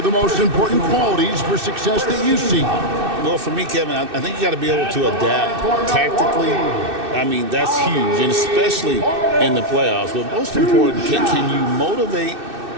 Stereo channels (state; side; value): late; left; 2.6 ms